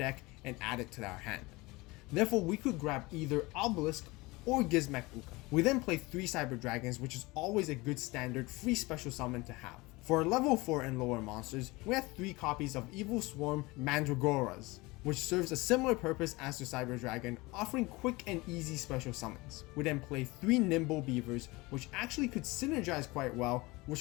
and add it to our hand. Therefore, we could grab either Obelisk or Gizmek Uka. We then play 3 Cyber Dragons, which is always a good standard free special summon to have. For our level 4 and lower monsters, we have 3 copies of Evil Swarm Mandragoras, which serves a similar purpose as the Cyber Dragon, offering quick and easy special summons. We then play 3 Nimble Beavers, which actually could synergize quite well,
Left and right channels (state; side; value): quieter; right; 22.7 dB